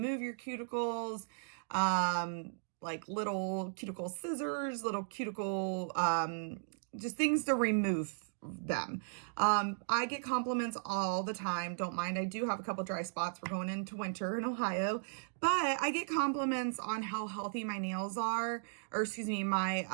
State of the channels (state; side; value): silent; left; digital silence